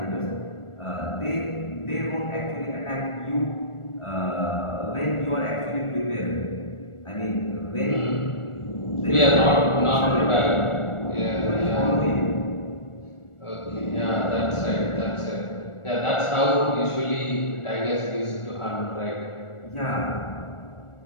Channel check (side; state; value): right; late; 1.4 ms